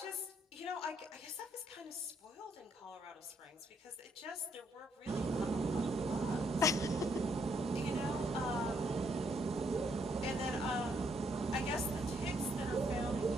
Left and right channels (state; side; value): normal; both; correlation 0.73